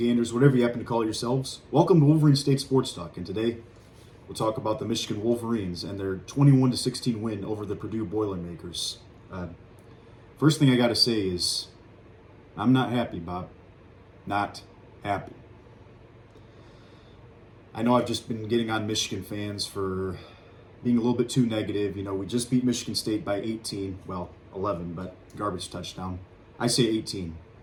whatever you happen to call yourselves? Welcome to Wolverine State Sports Talk, and today we'll talk about the Michigan Wolverines and their 21-16 win over the Purdue Boilermakers. First thing I got to say is, I'm not happy, Bob. Not happy. I know I've just been getting on Michigan fans for being a little bit too negative. You know, we just beat Michigan State by 18, well, 11, but garbage touchdown. I say 18.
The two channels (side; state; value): both; identical; correlation 1.00